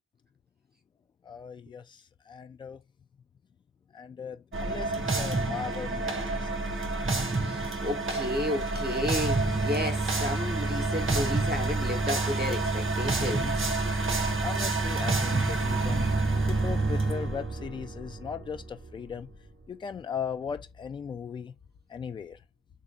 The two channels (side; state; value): both; normal; correlation 0.61